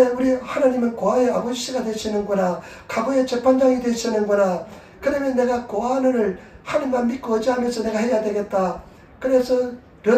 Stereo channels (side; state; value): both; identical; correlation 1.00